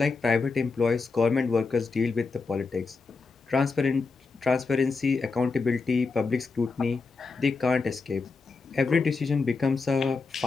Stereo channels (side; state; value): right; quieter; 4.3 dB